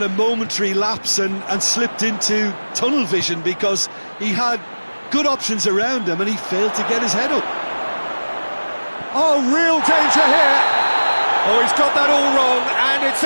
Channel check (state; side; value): inverted; both; correlation -1.00